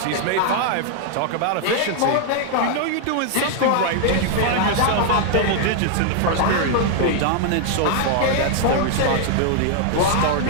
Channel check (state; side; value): different; both; correlation 0.00